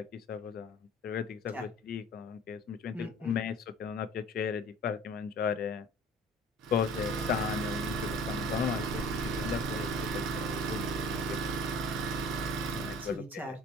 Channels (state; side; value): normal; both; correlation 0.46